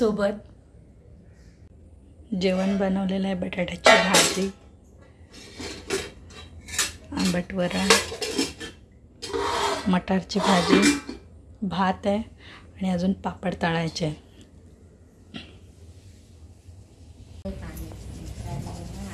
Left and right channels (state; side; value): identical; both; correlation 1.00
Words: जेवण बनवलेलं आहे, बटाट्याची भाजी, आंबट वरण, मटारची भाजी, भात आहे आणि अजून पापड तळायचे आहे।